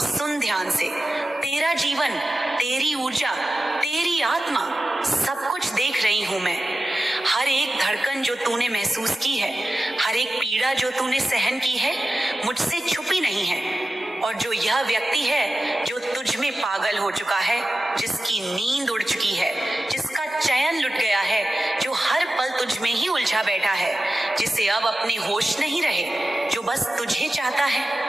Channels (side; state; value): both; normal; correlation 0.93